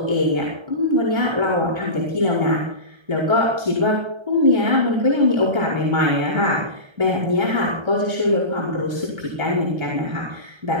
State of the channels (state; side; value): late; left; 1.3 ms